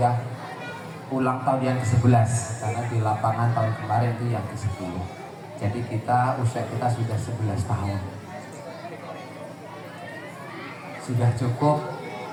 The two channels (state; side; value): identical; both; correlation 1.00